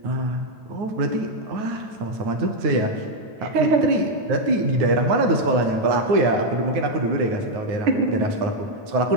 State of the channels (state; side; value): late; left; 9.5 ms